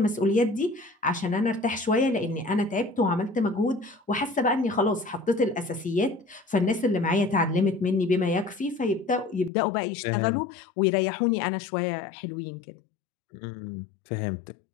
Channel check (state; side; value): drops out; right; at 9.5 s